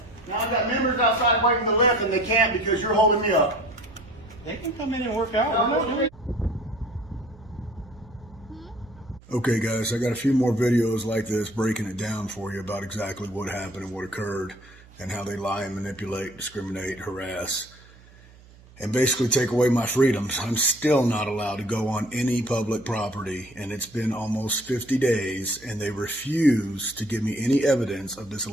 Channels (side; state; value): right; noise; hum, 24 dB below the sound